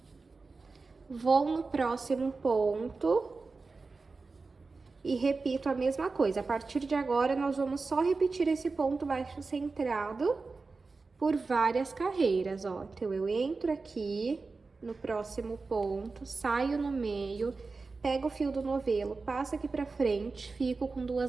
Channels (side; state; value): left; quieter; 4.0 dB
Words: Vou no próximo ponto e repito a mesma coisa. A partir de agora, nós vamos só repetir esse ponto baixo centrado por várias carreiras, ó. Então, eu entro aqui no próximo ponto, saio no meio, pego o fio do novelo, passo aqui pra frente, fico com